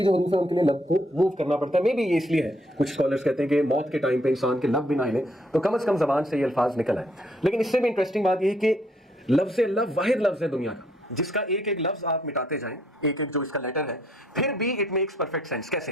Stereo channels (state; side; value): normal; both; correlation 0.69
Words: جو حروف ہیں ان کے لیے لب کو موو کرنا پڑتا ہے. مے بی یہ اس لیے ہے، کچھ اسکالرس کہتے ہیں کہ موت کے ٹائم پہ انسان کے لب بھی نہ ہلیں تو کم از کم زبان سے یہ الفاظ نکل آئے. لیکن اس سے بھی انٹرسٹنگ بات یہ ہے کہ لفظ اللہ واحد لفظ ہے دنیا کا جس کا ایک ایک لفظ آپ مٹاتے جائیں، ایک ایک جو اس کا لیٹر ہے، پھر بھی اٹ میکس پرفیکٹ سینس. کیسے؟